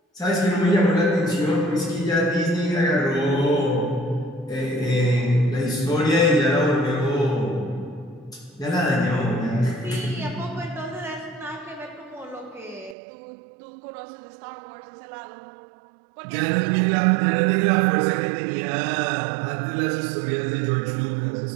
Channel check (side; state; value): left; drops out; at 13.0 s